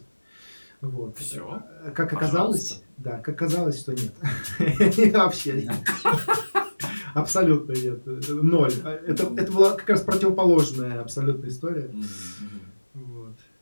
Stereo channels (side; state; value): both; inverted; correlation -1.00